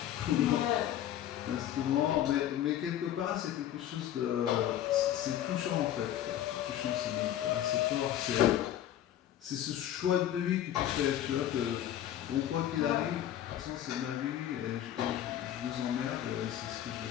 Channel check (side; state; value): right; quieter; 11.6 dB